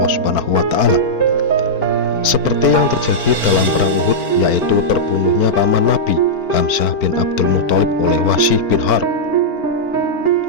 Subhanahu wa Ta'ala. Seperti yang terjadi dalam perang Uhud, yaitu terbunuhnya paman Nabi Hamzah bin Abdul Muthalib oleh Wahsy bin Harb.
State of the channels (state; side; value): late; right; 4.5 ms